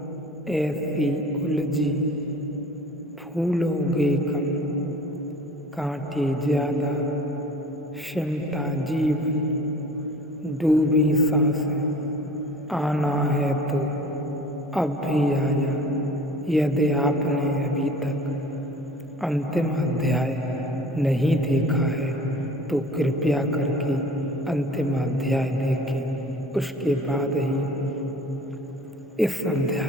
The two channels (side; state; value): both; normal; correlation 0.45